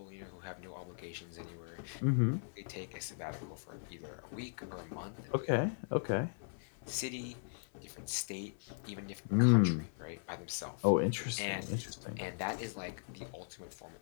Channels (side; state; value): right; silent; 52 dB below the other